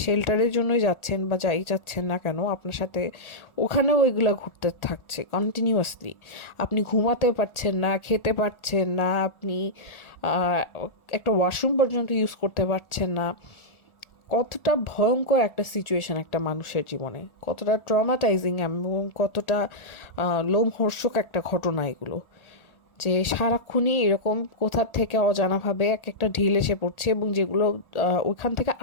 শেল্টারের জন্যই যাচ্ছেন বা যাই যাচ্ছেন না কেন, আপনার সাথে ওখানেও ওইগুলো ঘুরতে থাকছে কন্টিনিউয়াসলি। আপনি ঘুমাতে পারছেন না, খেতে পারছেন না, আপনি একটা ওয়াশরুম পর্যন্ত ইউজ করতে পারছেন না। কতটা ভয়ঙ্কর একটা সিচুয়েশন একটা মানুষের জীবনে, কতটা ট্রমাটাইজিং এবং কতটা লোমহর্ষক একটা ঘটনা এগুলো, যে সারাক্ষণই এরকম কোথার থেকে অজানাভাবে এক একটা ঢিল এসে পড়ছে এবং যেগুলো ওখান থেকে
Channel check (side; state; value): right; late; 1.4 ms